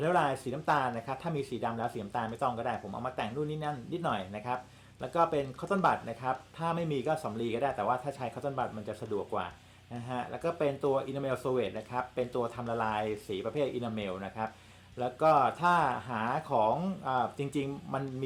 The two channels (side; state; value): both; identical; correlation 1.00